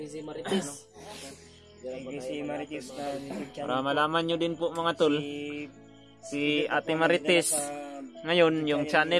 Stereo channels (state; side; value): identical; both; correlation 1.00